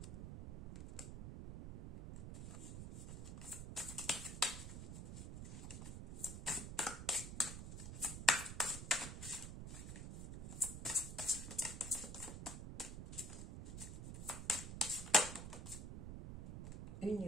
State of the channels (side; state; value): right; noise; rumble, 6 dB below the sound